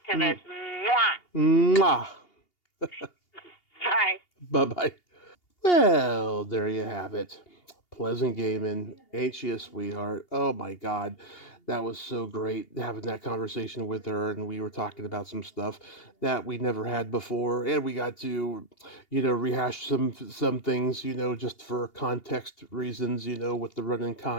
to this. Mwah. Bye. Bye-bye. Well, there you have it. Pleasant Gehman, ain't she a sweetheart? Oh my God, that was so great having that conversation with her, and we were talking about some stuff that we never had before, and we got to, rehash some things, just for context reasons, with the running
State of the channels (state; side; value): late; right; 2.8 ms